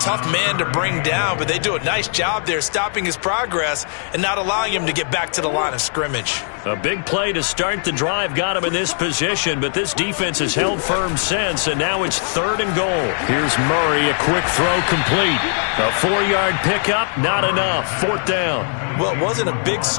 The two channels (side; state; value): right; silent; digital silence